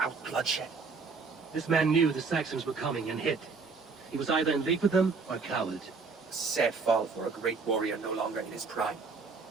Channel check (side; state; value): left; quieter; 4.6 dB